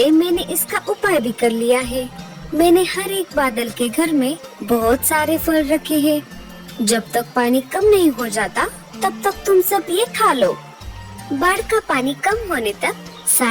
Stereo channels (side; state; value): both; identical; correlation 1.00